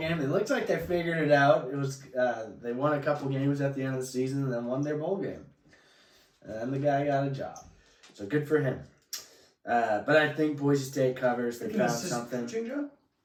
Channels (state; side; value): identical; both; correlation 1.00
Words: It looks like they figured it out. It was they won a couple games at the end of the season and then won their bowl game. And the guy got a job. So good for him. But I think Boise State covers. They found something. Joe?